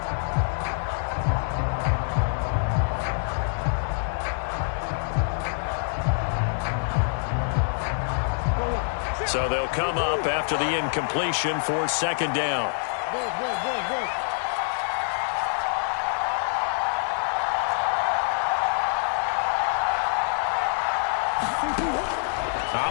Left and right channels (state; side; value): silent; right; digital silence